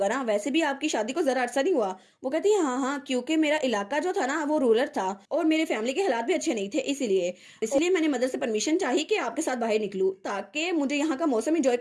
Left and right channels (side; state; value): both; identical; correlation 1.00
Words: ना? वैसे भी आपकी शादी को ज़रा अरसा नहीं हुआ। वो कहती है, हाँ हाँ, क्योंकि मेरा इलाका जो था ना वो रूरल था और मेरे फैमिली के हालात भी अच्छे नहीं थे, इसीलिए मैंने मदर से परमिशन चाहिए कि आपके साथ बाहर निकलूं ताकि मुझे यहाँ का मौसम इंजॉय